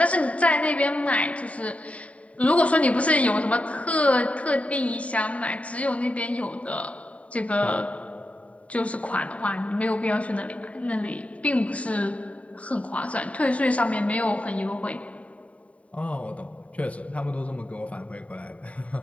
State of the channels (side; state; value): right; late; 0.066 ms